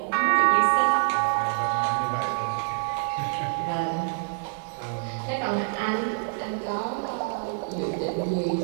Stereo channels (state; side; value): silent; left; digital silence